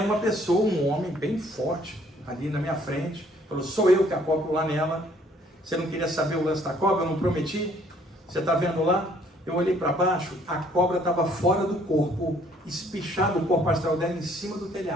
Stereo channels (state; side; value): normal; both; correlation 0.62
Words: uma pessoa, um homem bem forte, ali na minha frente. Falou, sou eu que acoplo lá nela. Você não queria saber o lance da cobra? Eu não prometi? Você está vendo lá? Eu olhei para baixo, a cobra estava fora do corpo, espichado o corpo astral dela em cima do